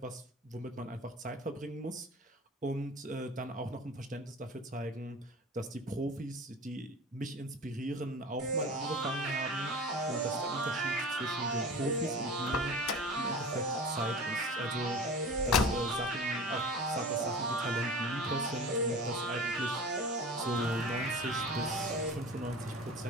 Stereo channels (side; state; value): both; normal; correlation 0.36